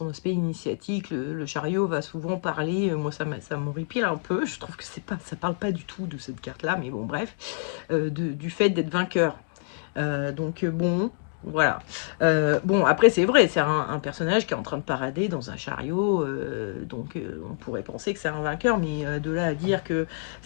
aspect initiatique. Le chariot va souvent parler, moi ça m'horripile un peu, je trouve que ça parle pas du tout de cette carte là, mais bon bref, du fait d'être vainqueur. Donc bon, voilà. Bon, après c'est vrai, c'est un personnage qui est en train de parader dans un chariot, donc on pourrait penser que c'est un vainqueur, mais de là à dire que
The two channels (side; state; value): right; silent; digital silence